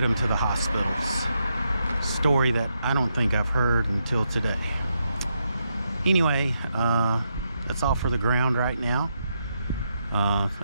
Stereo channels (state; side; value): inverted; both; correlation -0.81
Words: them to the hospitals. Story that I don't think I've heard until today. Anyway, that's all for the ground right now.